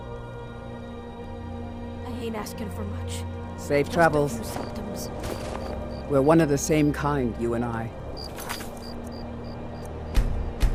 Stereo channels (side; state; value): both; identical; correlation 1.00